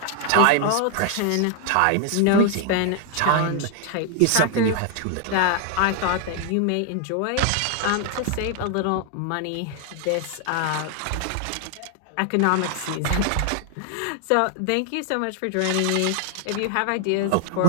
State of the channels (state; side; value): different; both; correlation 0.00